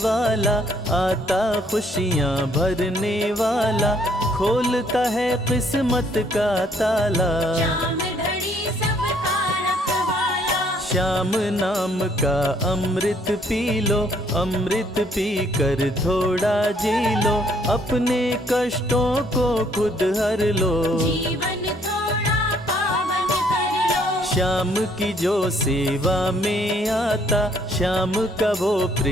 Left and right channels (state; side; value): normal; both; correlation 0.66